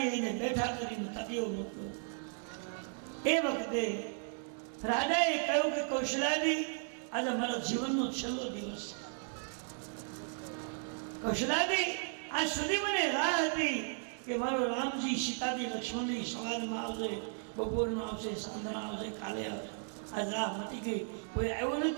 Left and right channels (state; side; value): silent; left; 54 dB below the other